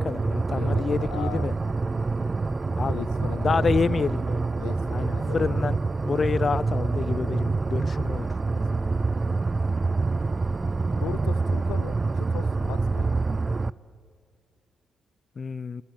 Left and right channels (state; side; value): normal; both; correlation 0.91